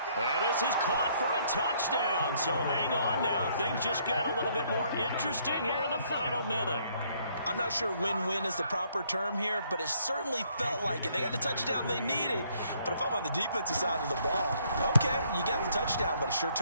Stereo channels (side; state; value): both; inverted; correlation -0.66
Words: And this is caught for a touchdown. So hang on now. Things just got a little bit more interesting here in the final minute. I'm not sure win-win is the proper term here, but it certainly felt like it. They got the touchdown they needed, but if I'm on the defensive side of the ball, okay, you got the touchdown, but it sure